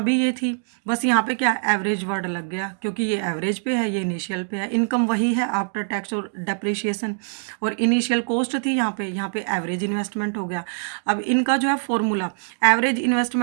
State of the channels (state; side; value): silent; left; digital silence